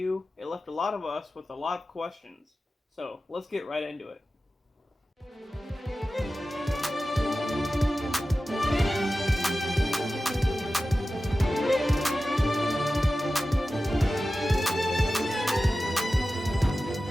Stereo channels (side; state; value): both; normal; correlation 0.94